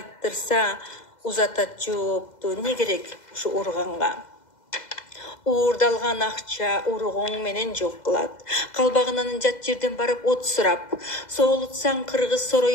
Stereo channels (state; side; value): late; right; 2.0 ms